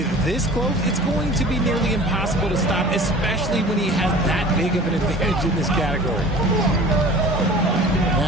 this close, it's going to be nearly impossible to stop, especially when he has that big of an advantage in this category.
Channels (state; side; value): normal; both; correlation 0.43